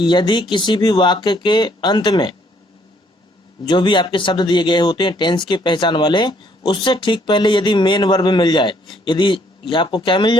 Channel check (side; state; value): both; normal; correlation 0.66